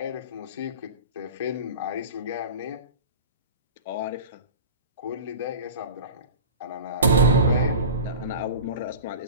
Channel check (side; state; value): both; inverted; correlation -0.33